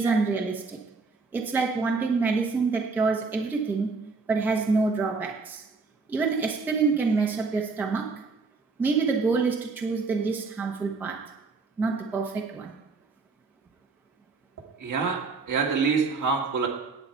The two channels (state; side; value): quieter; left; 4.3 dB